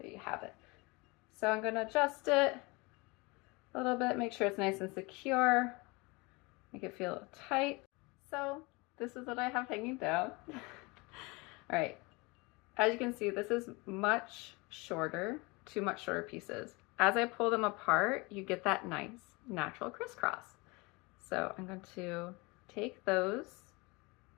you have it. So I'm going to adjust it a little bit, make sure it's nice and secure, make it feel tight. So this is what I have hanging down. All right, As you can see, this is much shorter, two much shorter pieces. As I pull them apart, you get that nice natural crisscross. So I'm going to take those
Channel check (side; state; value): right; quieter; 26.0 dB